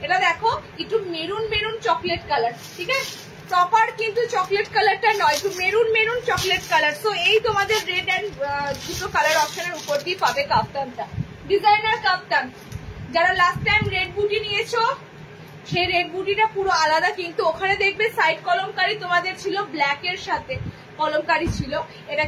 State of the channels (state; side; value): identical; both; correlation 1.00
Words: এটা দেখো একটু মেরুন মেরুন চকলেট কালার। ঠিক আছে, প্রপার কিন্তু চকলেট কালারটা নয়, একটু maroon maroon chocolate colour. So এই তোমাদের রেড অ্যান্ড দুটো কালার অপশনের উপর দিয়ে পাবে কাপ্তানটা। ডিজাইনার কাপ্তান, যারা লাস্ট টাইম রেড বুটি নিয়েছো সেই রেড বুটিটা পুরো আলাদা, কিন্তু ওখানে দেখবে সাইড কলমকারি তোমাদের ছিল ব্ল্যাক এর সাথে কলমকারি ছিল, এটা